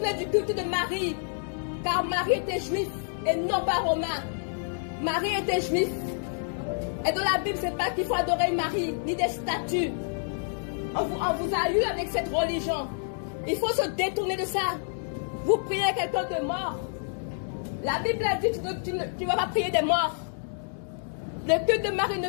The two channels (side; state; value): right; silent; digital silence